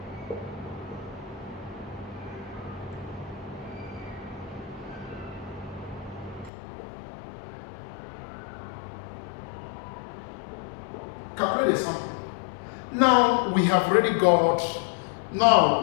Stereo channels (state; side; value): drops out; right; at 6.5 s